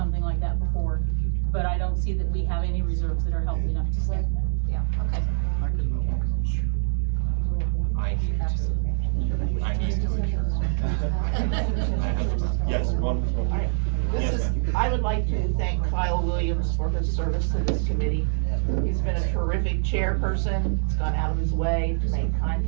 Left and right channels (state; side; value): silent; left; digital silence